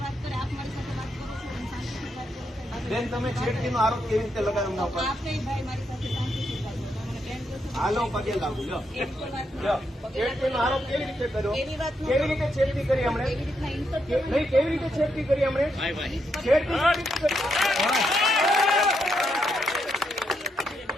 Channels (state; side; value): normal; both; correlation 0.80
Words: બેન, તમે છેડતીનો આરોપ કેવી રીતે લગાવ્યો એમના ઉપર? હાલો, પગે લાગુ. લો, છેડતીનો આરોપ કેવી રીતે કર્યો? કેવી રીતે છેડતી કરી હમણે? નહીં, કેવી રીતે છેડતી કરી હમણે?